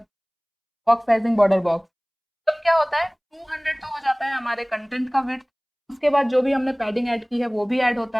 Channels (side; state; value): both; identical; correlation 1.00